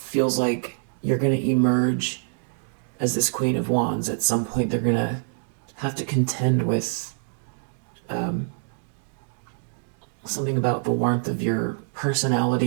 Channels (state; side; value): silent; left; digital silence